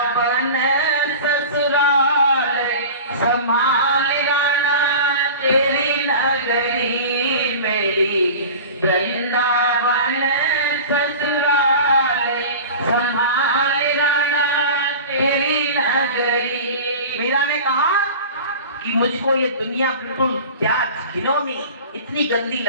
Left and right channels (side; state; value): both; inverted; correlation -0.36